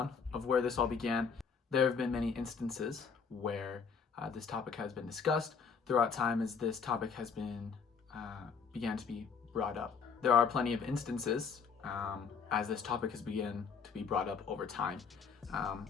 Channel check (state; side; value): quieter; right; 5.9 dB